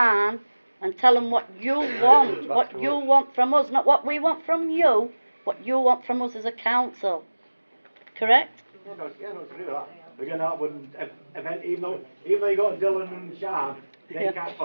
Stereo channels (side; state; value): both; inverted; correlation -1.00